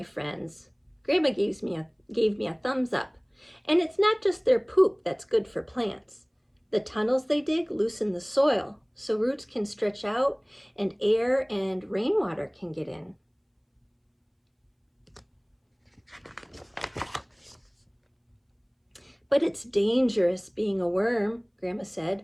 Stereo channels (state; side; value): identical; both; correlation 1.00